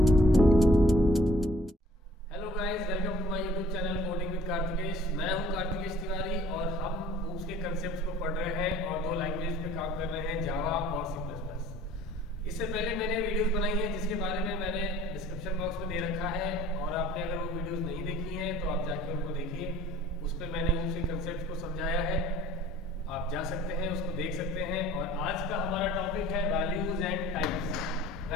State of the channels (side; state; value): both; normal; correlation 0.53